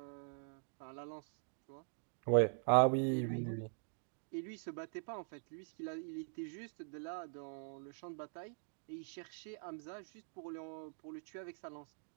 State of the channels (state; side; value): silent; left; digital silence